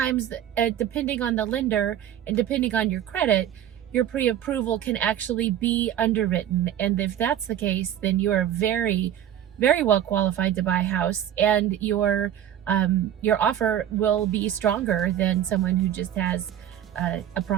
depending on the lender and depending on your credit, your pre-approval can actually be underwritten. And if that's the case, then you are very well qualified to buy a house, and your offer will be stronger than someone who just has a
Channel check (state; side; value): quieter; left; 10.9 dB